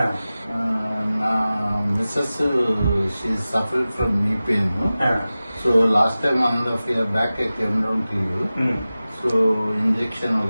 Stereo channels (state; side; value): inverted; both; correlation -0.96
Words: నా missus she suffered from knee pain. So last time 1.5 years back I came down to you. So injection